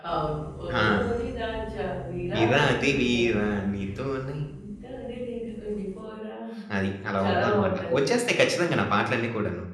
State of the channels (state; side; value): identical; both; correlation 1.00